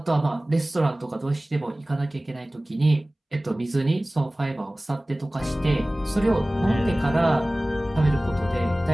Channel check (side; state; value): both; normal; correlation 0.98